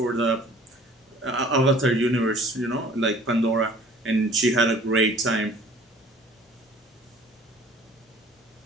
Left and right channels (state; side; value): normal; both; correlation 0.50